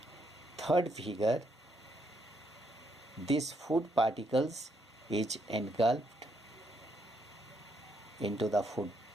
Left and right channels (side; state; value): both; normal; correlation 0.75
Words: Third figure, this food particles is engulfed into the food